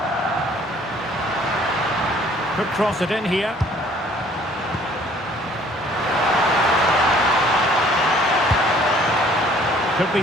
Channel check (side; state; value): both; normal; correlation 0.57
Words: Could cross it in here. Could be